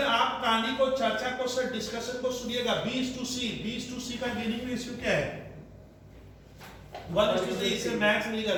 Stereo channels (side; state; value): both; identical; correlation 1.00